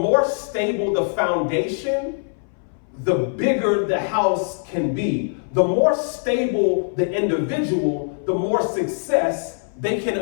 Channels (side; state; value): right; silent; 62 dB below the other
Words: stable the foundation, the bigger the house can be. The more stable the individual, the more success they can